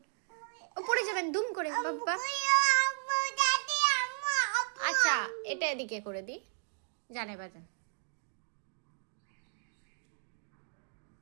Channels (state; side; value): silent; left; digital silence